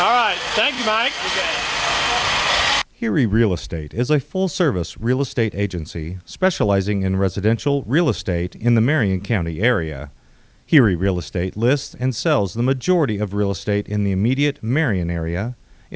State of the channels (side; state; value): both; identical; correlation 1.00